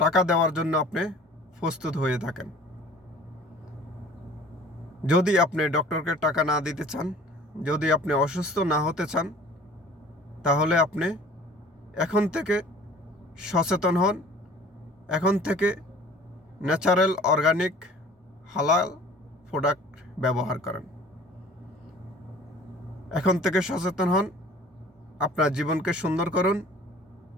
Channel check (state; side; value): normal; both; correlation 0.48